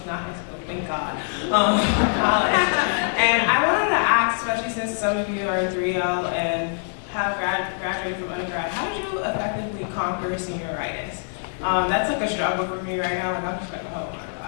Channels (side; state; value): right; silent; digital silence